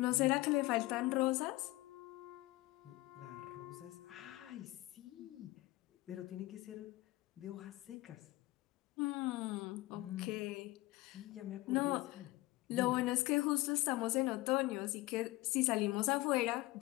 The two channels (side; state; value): right; quieter; 19.4 dB